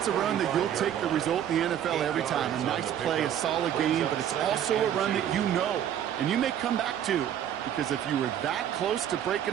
a run that you'll take the result in the NFL every time. A nice play, a solid game, but it's also a run that you know, and you may come back to, because if you were that close to breaking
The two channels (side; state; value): left; quieter; 10.1 dB